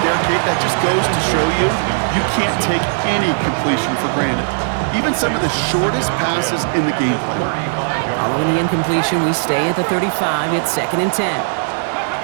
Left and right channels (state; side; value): silent; left; 68 dB below the other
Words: Kate, that just goes to show you, you can't take any completion for granted. Even some of the shortest passes in the game plan. Following the incompletion, we stay at the 35. It's 2nd and 10.